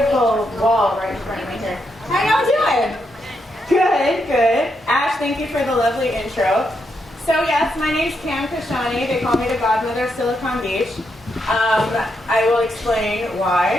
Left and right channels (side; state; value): both; normal; correlation 0.81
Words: wall right in front of me here. How y'all doing? Good, good. Ash, thank you for the lovely intro. So yes, my name's Kashani. They call me the godmother of Silicon Beach. I will explain